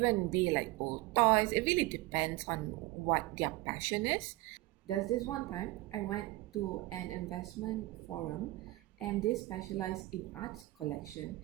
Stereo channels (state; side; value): quieter; left; 19.7 dB